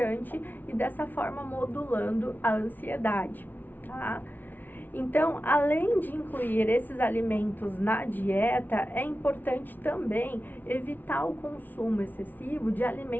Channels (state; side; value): late; right; 0.086 ms